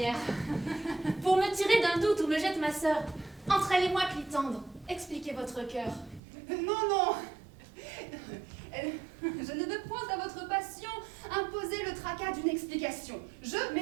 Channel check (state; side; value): drops out; left; at 6.2 s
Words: Pour me tirer d'un doute où me jette ma sœur, entre elle et moi, Clitandre, expliquez votre cœur. Non, non, je ne veux point à votre passion imposer le tracas d'une explication. Je